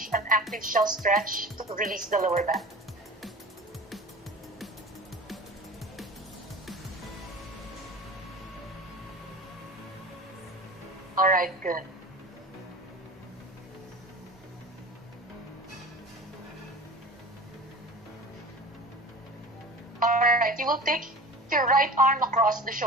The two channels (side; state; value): both; normal; correlation 0.37